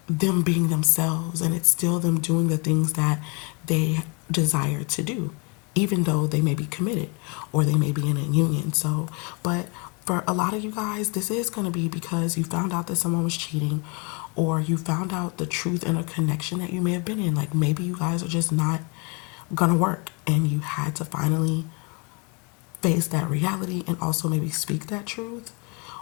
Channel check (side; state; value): right; quieter; 32.1 dB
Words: them being themselves, and it's still them doing the things that they desire to do, even though they may be committed or they may be in a union. So, but For a lot of you guys, this is going to be because you found out that someone was cheating, or you found out the truth in a connection that you may have been in. Like maybe you guys are just not going to work and you had to finally face that reality and also maybe speak that truth.